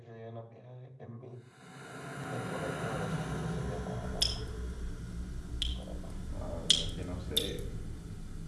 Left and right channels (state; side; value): identical; both; correlation 1.00